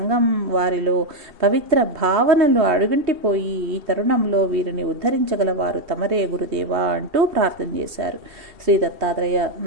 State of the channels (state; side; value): late; left; 2.7 ms